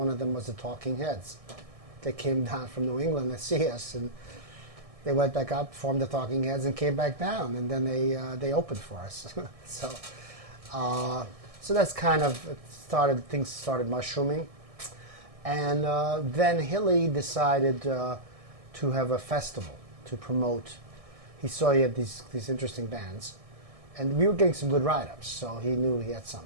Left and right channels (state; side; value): late; left; 1.6 ms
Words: of them was the Talking Heads. they came down from New England to see us, and they went back up, formed the Talking Heads, and came back down, and then they opened for us. So so that's kind of things started mushrooming, and then Hilly decided to have a festival to promote. He saw he had these interesting bands, and we were getting some good write-ups, so he knew he had